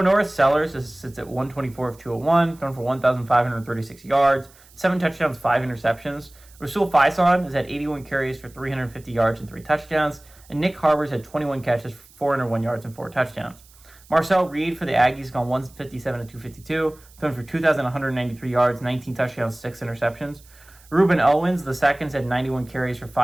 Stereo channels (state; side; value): noise; right; hiss, 26 dB below the sound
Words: North Sellers sits at 124 of 201, thrown for 1,536 yards, 7 touchdowns, 5 interceptions. Rasul Faison is at 81 carries for 350 yards and 3 touchdowns, and Nick Harbors had 21 catches for 401 yards and 4 touchdowns. Marcel Reed for the Aggies gone 157 of 252, thrown for 2,193 yards, 19 touchdowns, 6 interceptions. Ruben Owens, the seconds, had 91 carries for